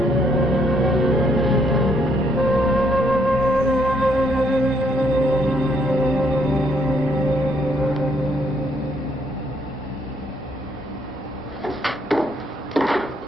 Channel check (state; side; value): normal; both; correlation 0.70